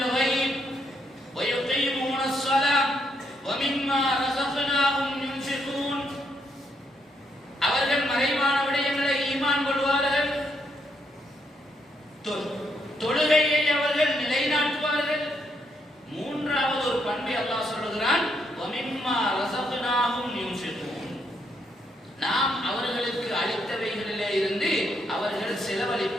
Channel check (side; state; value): both; normal; correlation 0.76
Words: وَيُقِيمُونَ الصَّلَاةَ وَمِمَّا رَزَقْنَاهُمْ يُنْفِقُونَ. அவர்கள் மறைவான விடயங்களை ஈமான் கொள்வார்கள், தொழுகையை அவர்கள் நிலைநாட்டுவார்கள். மூன்றாவது ஒரு பண்பை அல்லாஹ் சொல்கிறான், وَمِمَّا رَزَقْنَاهُمْ يُنْفِقُونَ. நாம் அவர்களுக்கு அளித்தவைகளிலே இருந்து அவர்கள்